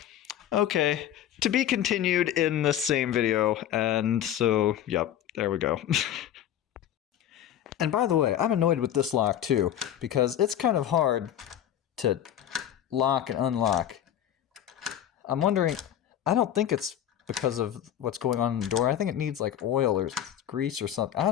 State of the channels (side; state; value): right; quieter; 10.8 dB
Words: okay, to be continued in the same video. And so, yep, there we go. And by the way, I'm annoyed with this lock too, because it's kind of hard to lock and unlock. I'm wondering, I don't think it's because of what's going on in the door. I think it needs like oil or grease or something. I